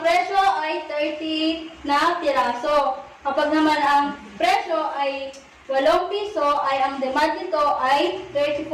presyo ay 30 na piraso. Kapag naman ang presyo ay 8 piso, ay ang demand nito ay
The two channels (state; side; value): identical; both; correlation 1.00